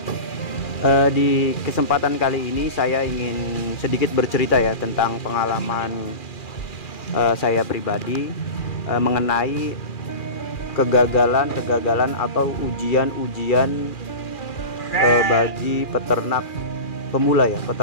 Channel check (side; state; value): right; late; 2.4 ms